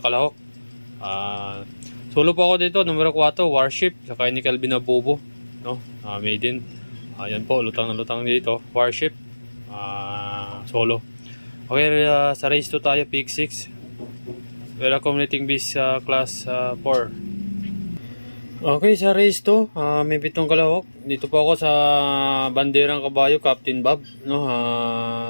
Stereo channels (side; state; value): both; inverted; correlation -1.00